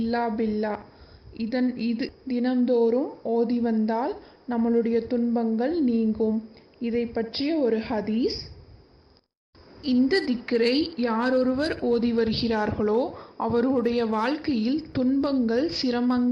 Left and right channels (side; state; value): both; identical; correlation 1.00